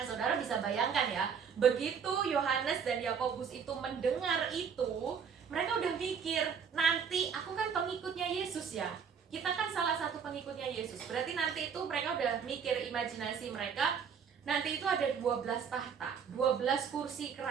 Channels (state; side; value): quieter; left; 6.8 dB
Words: saudara bisa bayangkan ya, begitu Yohanes dan Yakobus itu mendengar itu, mereka udah mikir, nanti aku kan pengikutnya Yesus ya. Kita kan salah satu pengikutnya Yesus. Berarti nanti itu mereka udah mikir, imajinasi mereka, nanti itu ada 12 tahta, 12 kursi